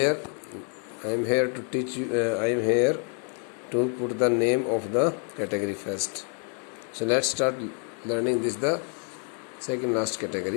I am here to teach you I am here to put the name of the category first. So let's start learning this the second last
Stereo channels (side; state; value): right; quieter; 38.3 dB